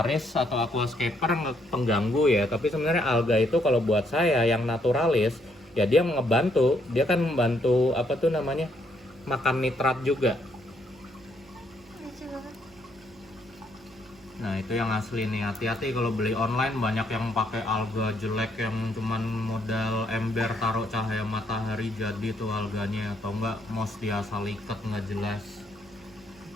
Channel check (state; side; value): normal; both; correlation 0.72